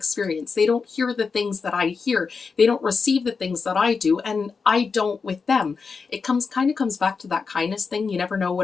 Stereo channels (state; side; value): quieter; right; 5.1 dB